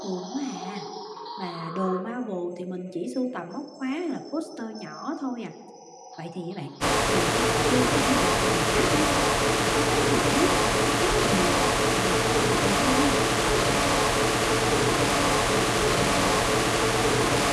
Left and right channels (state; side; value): identical; both; correlation 1.00